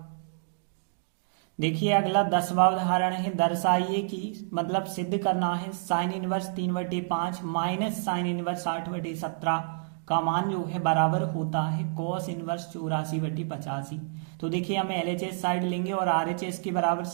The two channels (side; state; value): left; silent; digital silence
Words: देखिए अगला 10वां उदाहरण है, दर्शाइए कि मतलब सिद्ध करना है sine inverse 3/5 minus sine inverse 8/17 का मान जो है बराबर होता है कॉस इनवर्स 84/85। तो देखिए हमें LHS साइड लेंगे और RHS के बराबर